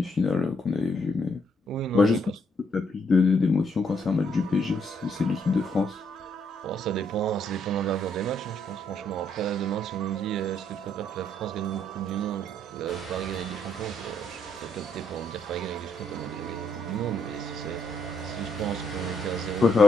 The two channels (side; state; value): both; normal; correlation 0.73